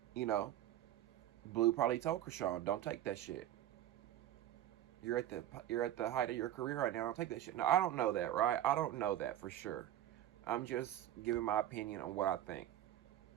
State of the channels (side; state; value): left; quieter; 12.3 dB